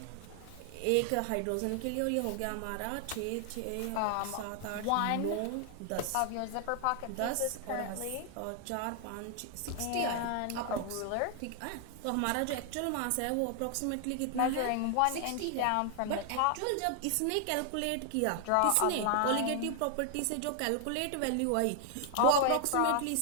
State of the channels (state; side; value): different; both; correlation 0.00